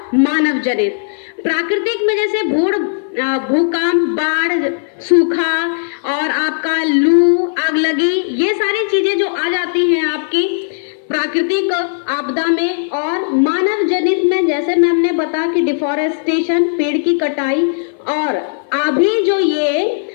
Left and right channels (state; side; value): silent; right; 57 dB below the other